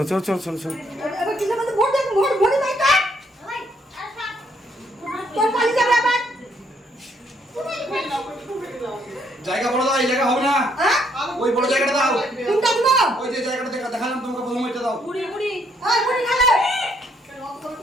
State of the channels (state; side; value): normal; both; correlation 0.70